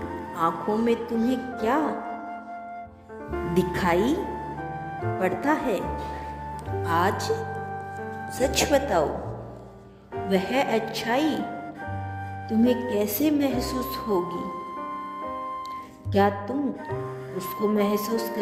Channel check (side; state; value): both; identical; correlation 1.00